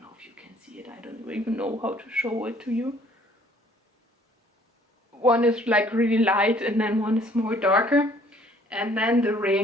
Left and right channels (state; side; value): normal; both; correlation 0.58